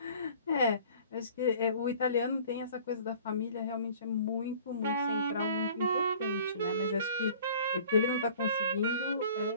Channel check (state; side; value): inverted; both; correlation -0.49